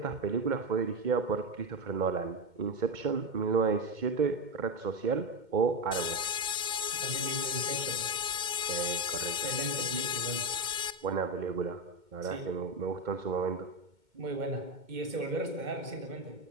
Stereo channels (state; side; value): late; left; 2.2 ms